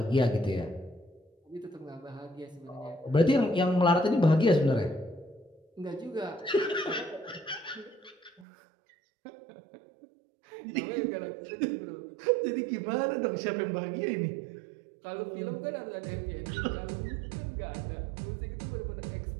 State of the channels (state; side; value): drops out; left; at 8.5 s